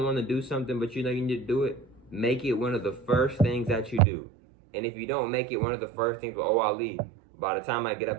want to do something, but you know you need to do it, make it one of the first things that you do. And if you don't make it one of the first things, well, I'll leave. By the time I get up,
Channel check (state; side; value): drops out; left; at 4.0 s